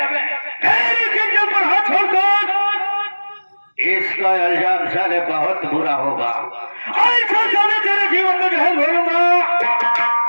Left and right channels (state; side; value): inverted; both; correlation -1.00